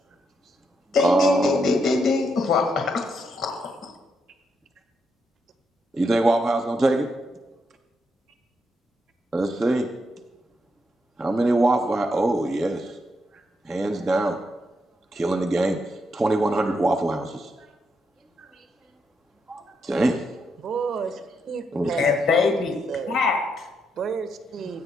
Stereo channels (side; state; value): both; normal; correlation 0.80